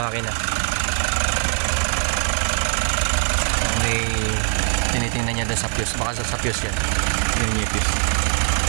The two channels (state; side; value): silent; left; digital silence